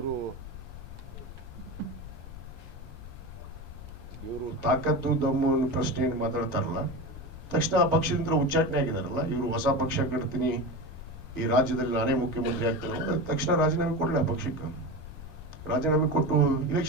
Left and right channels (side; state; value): left; noise; rumble, 12 dB below the sound